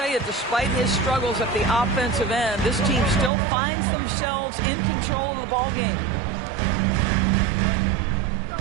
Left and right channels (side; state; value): left; drops out; at 3.3 s